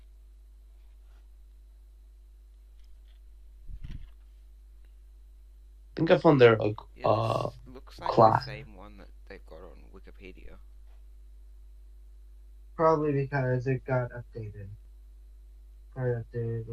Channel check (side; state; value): both; identical; correlation 1.00